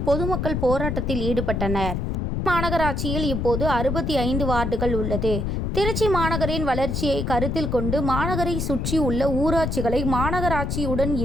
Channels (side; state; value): left; noise; rumble, 1 dB below the sound